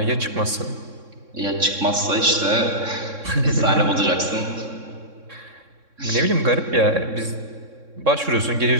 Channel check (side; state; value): left; late; 3.6 ms